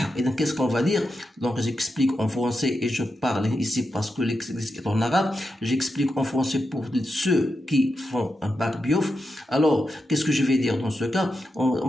إذا qu'est-ce qu'on va dire? Donc j'explique en français et je parle ici parce que l'exercice est en arabe. J'explique en français pour ceux qui font un bac biof. Alors qu'est-ce que je vais dire dans ce cas? On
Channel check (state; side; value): normal; both; correlation 0.88